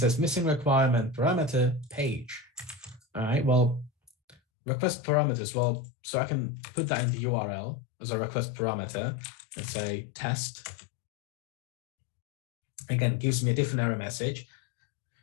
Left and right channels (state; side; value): drops out; right; at 4.4 s